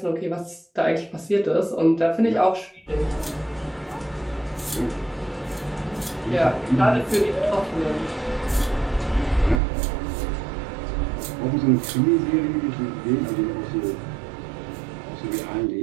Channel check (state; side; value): drops out; left; at 9.6 s